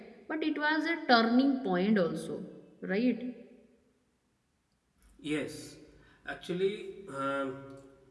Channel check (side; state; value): both; identical; correlation 1.00